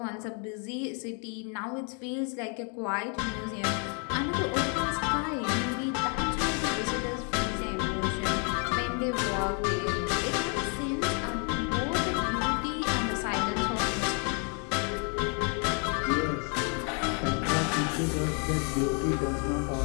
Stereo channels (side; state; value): right; quieter; 38.1 dB